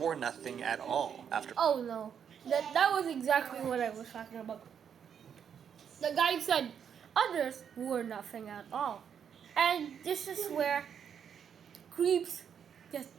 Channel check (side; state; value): left; quieter; 7.9 dB